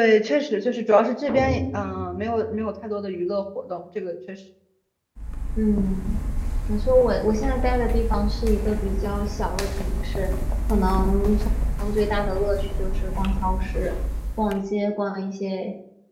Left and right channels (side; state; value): both; identical; correlation 1.00